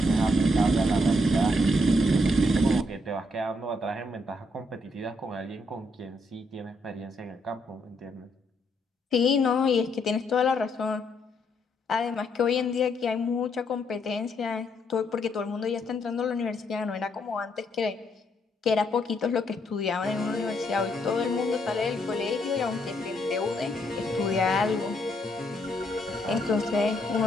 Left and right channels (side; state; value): both; normal; correlation 0.74